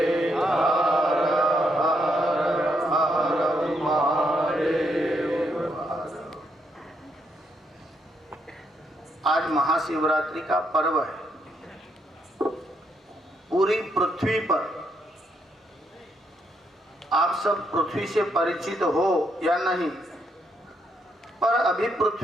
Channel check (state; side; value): normal; both; correlation 0.77